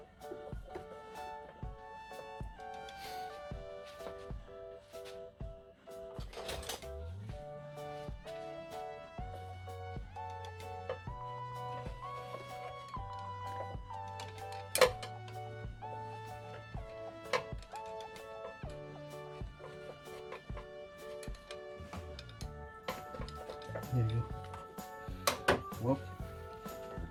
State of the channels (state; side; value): identical; both; correlation 1.00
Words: There you go. Well,